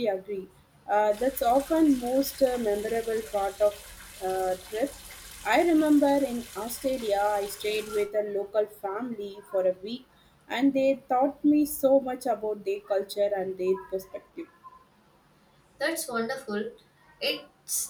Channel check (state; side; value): identical; both; correlation 1.00